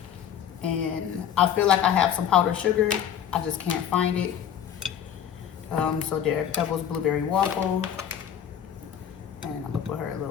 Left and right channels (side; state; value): right; quieter; 9.2 dB